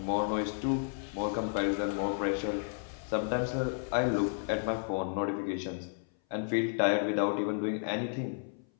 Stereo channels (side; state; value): right; silent; 56 dB below the other